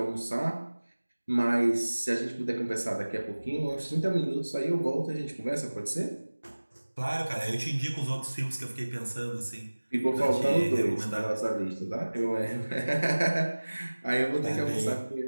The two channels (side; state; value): both; inverted; correlation -1.00